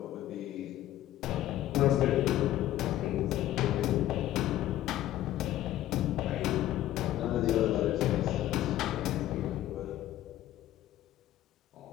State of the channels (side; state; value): right; quieter; 13.6 dB